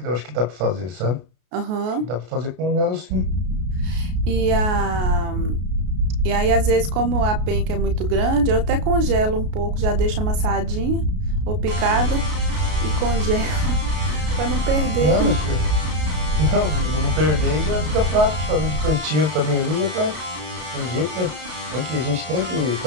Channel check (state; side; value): late; left; 33 ms